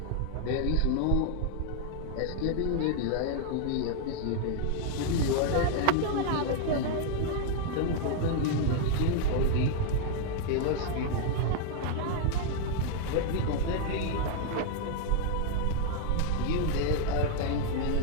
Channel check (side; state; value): both; different; correlation 0.00